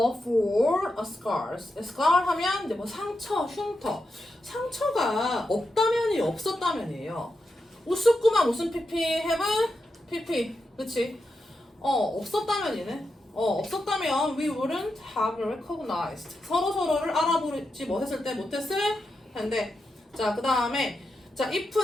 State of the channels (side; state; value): both; normal; correlation 0.87